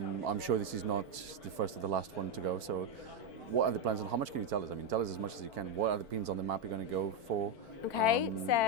sure this is not the first or the last one to go. So, what are the plans and how much can you tell us? I mean, tell us as much as you can. What are the pins on the map you're going to go for? Okay,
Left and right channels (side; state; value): left; late; 4.5 ms